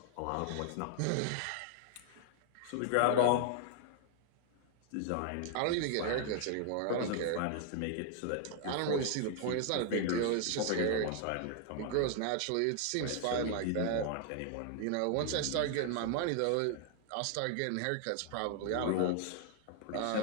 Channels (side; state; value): both; different; correlation 0.00